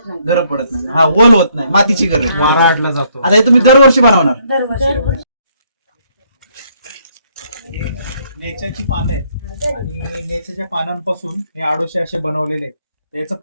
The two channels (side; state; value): both; inverted; correlation -0.69